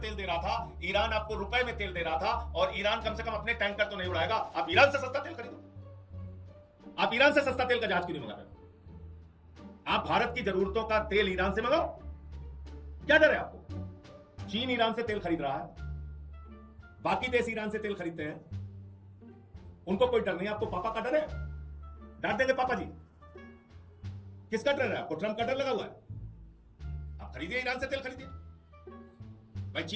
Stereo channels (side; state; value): both; identical; correlation 1.00